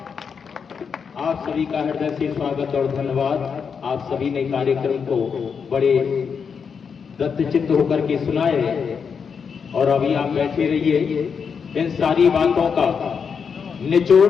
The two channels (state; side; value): quieter; right; 6.3 dB